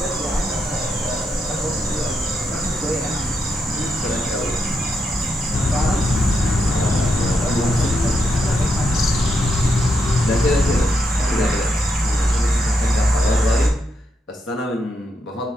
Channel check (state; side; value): normal; both; correlation 0.82